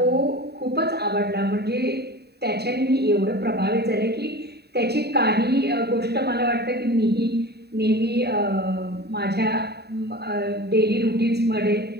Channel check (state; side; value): late; left; 0.48 ms